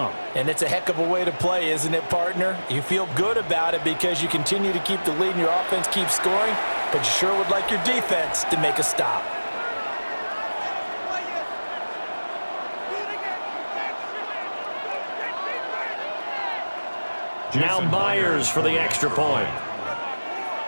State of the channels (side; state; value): both; inverted; correlation -1.00